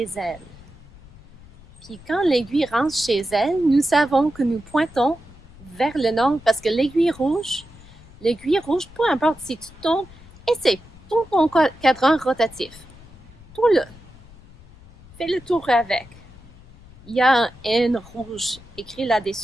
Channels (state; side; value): noise; left; rumble, 22 dB below the sound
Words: elle. Puis quand l'aiguille rentre chez elle, nous savons que nous pointons vers le nord parce que l'aiguille rouge, peu importe si tu tournes, essaie, tourne ton cadran rotatif. Tourne-le. Fais le tour avec. Il y a un N rouge écrit